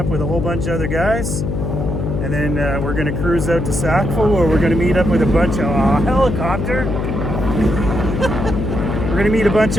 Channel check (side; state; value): left; noise; hum, 2 dB below the sound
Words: with a whole bunch of other guys. And then we're going to cruise out to Sackville, where we're going to meet up with a bunch of helicopter. We're going to meet a bunch